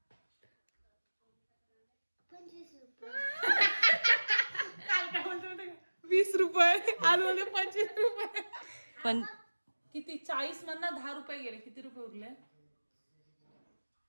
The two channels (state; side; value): inverted; both; correlation -1.00